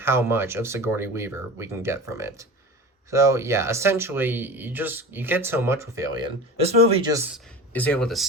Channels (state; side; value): normal; both; correlation 0.33